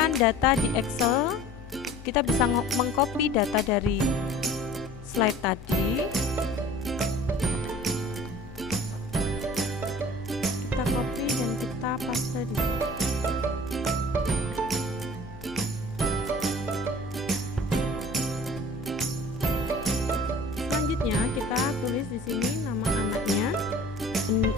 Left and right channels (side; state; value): both; normal; correlation 0.46